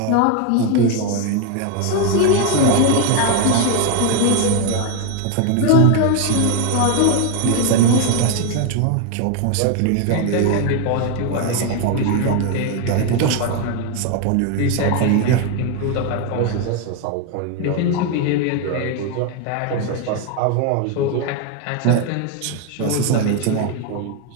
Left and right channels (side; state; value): both; different; correlation 0.01